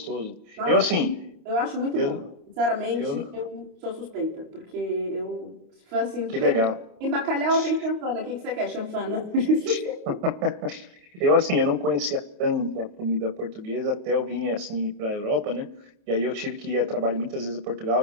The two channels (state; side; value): late; left; 28 ms